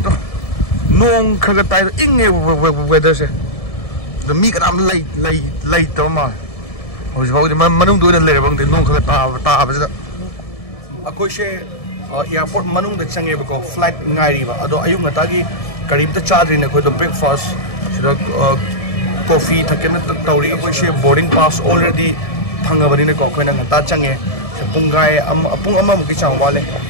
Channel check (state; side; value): late; right; 1.7 ms